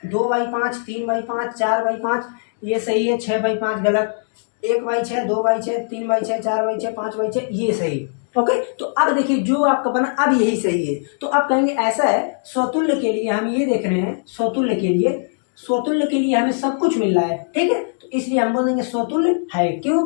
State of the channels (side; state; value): right; silent; digital silence